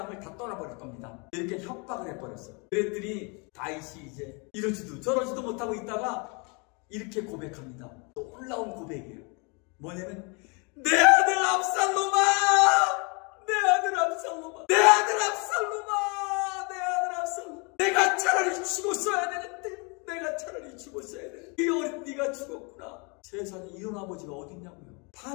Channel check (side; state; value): right; quieter; 32.2 dB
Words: 다 떠나버릴 겁니다. 이렇게 협박을 해버렸어요. 그랬더니 다윗이 이제 이러지도 저러지도 못하고 있다가 이렇게 고백합니다. 놀라운 고백이에요. 뭐냐면, 내 아들 압살롬아! 내 아들 압살롬아! 내 아들 압살롬아! 내 아들 압살롬아! 내가 차라리 죽었어야 되는데, 내가 차라리 죽었어야 되는데, 이 어린 네가 죽었구나. 세상에 이런 아버지가 어딨냐고요.